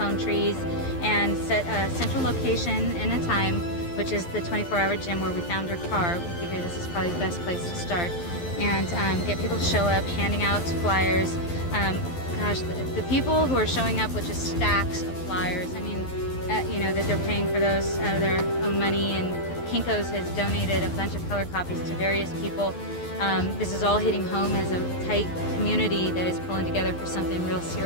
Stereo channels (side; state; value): right; late; 12 ms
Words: trees and set a central location and a time, which is the 24-hour gym where we found her car. We figured this is probably the best place to start. And get people to show up, handing out flyers. Gosh, the people who are showing up with just stacks of flyers, I mean, that they're paying for those out of their own money and Kinko's has donated a bunch of color copies to various people. This is all hitting home as a tight community that is pulling together for something real